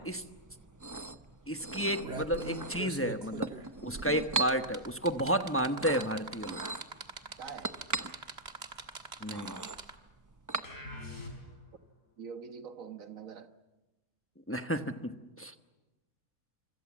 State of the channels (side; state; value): both; normal; correlation -0.07